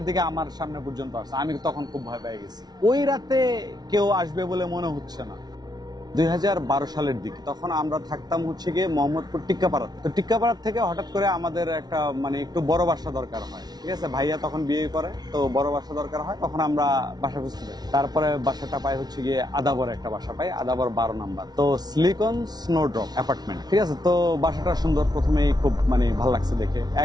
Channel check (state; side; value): late; left; 0.19 ms